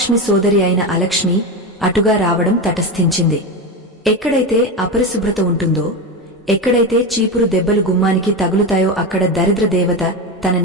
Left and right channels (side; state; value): both; normal; correlation 0.18